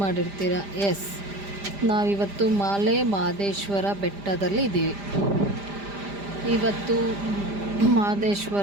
ಮಾಡಿರ್ತೀರ. ಎಸ್, ನಾವಿವತ್ತು ಮಾಲೆ ಮಹದೇಶ್ವರ ಬೆಟ್ಟದಲ್ಲಿ ಇದ್ದೀವಿ. ಇವತ್ತು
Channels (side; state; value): left; late; 5.0 ms